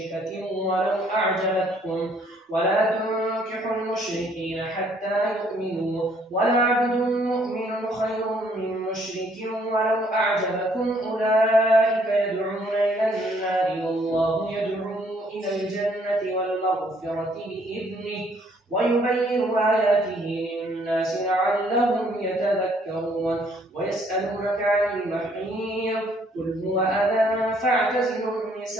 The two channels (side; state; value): both; normal; correlation 0.65